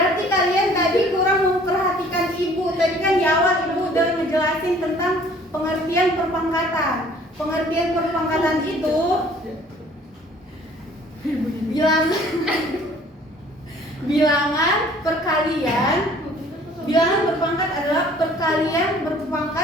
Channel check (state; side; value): normal; both; correlation 0.54